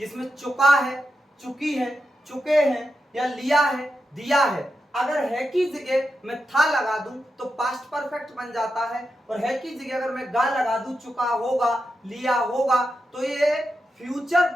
चुका है, चुकी है, चुके हैं या लिया है, दिया है। अगर है की जगह मैं था लगा दूं तो पास्ट परफेक्ट बन जाता है, और है की जगह अगर मैं गा लगा दूं, चुका होगा, लिया होगा, तो ये फ्यूचर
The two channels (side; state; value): both; normal; correlation 0.88